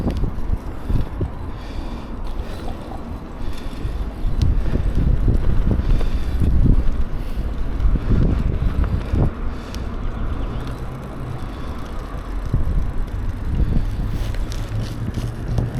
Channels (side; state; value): both; identical; correlation 1.00